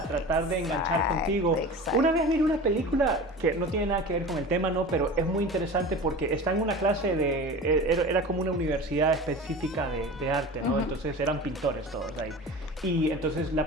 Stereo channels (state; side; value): normal; both; correlation 0.34